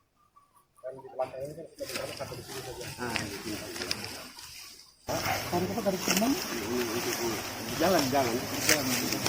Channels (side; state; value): both; identical; correlation 1.00